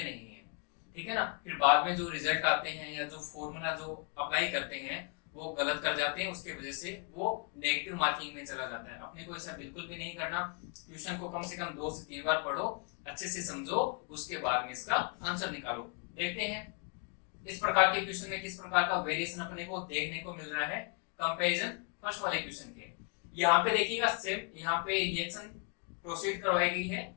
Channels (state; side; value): quieter; right; 33.8 dB